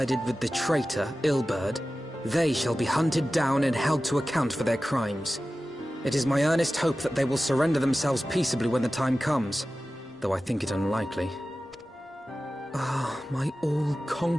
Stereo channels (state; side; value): normal; both; correlation 0.95